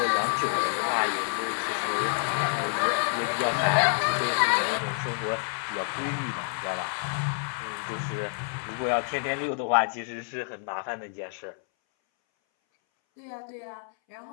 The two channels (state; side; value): silent; right; 59 dB below the other